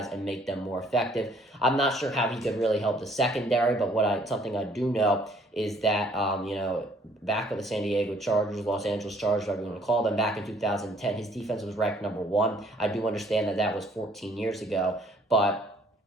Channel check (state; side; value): normal; both; correlation 0.61